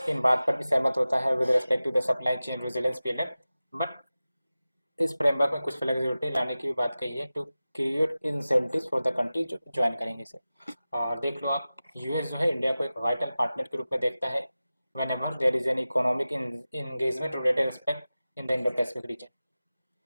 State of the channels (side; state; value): both; inverted; correlation -0.96